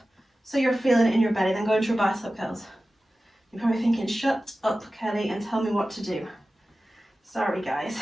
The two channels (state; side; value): normal; both; correlation 0.95